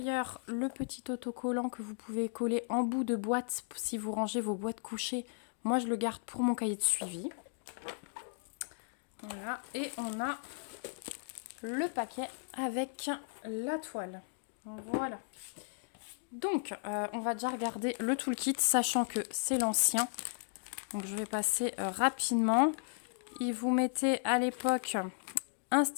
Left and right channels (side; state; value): right; silent; digital silence